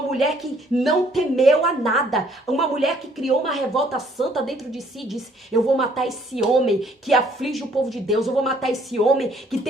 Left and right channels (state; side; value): normal; both; correlation 0.63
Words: que não temeu a nada, uma mulher que criou uma revolta santa dentro de si e disse, eu vou matar esse homem que aflige o povo de Deus, eu vou matar esse homem que